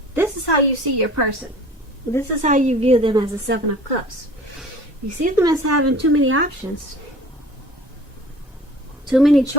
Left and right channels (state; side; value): normal; both; correlation 0.46